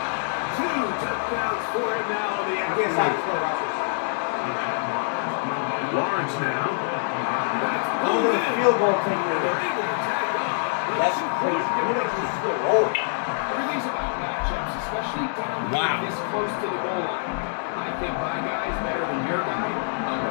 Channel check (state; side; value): silent; right; 62 dB below the other